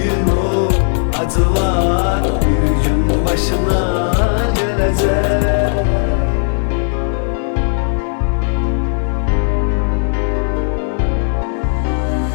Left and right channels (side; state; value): right; silent; digital silence